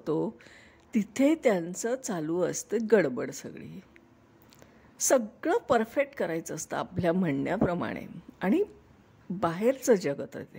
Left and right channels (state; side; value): identical; both; correlation 1.00